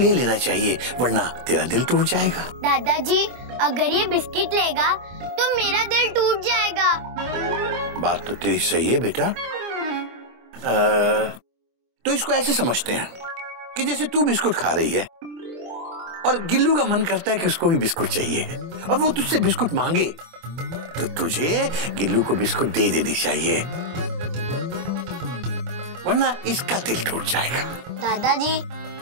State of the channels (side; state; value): left; late; 24 ms